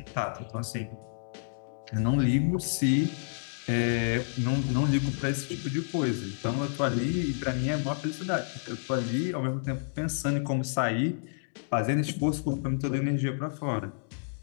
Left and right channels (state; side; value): silent; right; digital silence